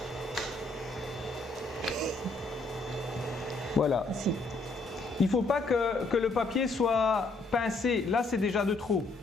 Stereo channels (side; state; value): right; quieter; 3.2 dB